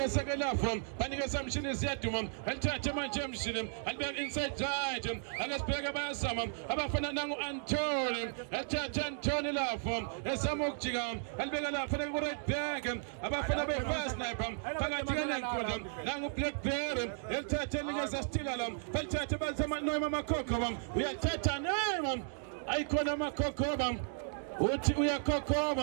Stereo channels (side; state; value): left; silent; digital silence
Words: ke lapho banikeza mshini ziyaduma alithathe manje emshini alibeka inside right akasibheke bayazama abafana nangu Antony alithathe Antony lapho esama ukujika alibeka lapha ku right back abafana be fast sniper phakathi nenkundla nangu Blackberry elithathe nikeza Stilala balithathe bazama noyima amakhokho uyathatha nema ayikona amakhokho uthi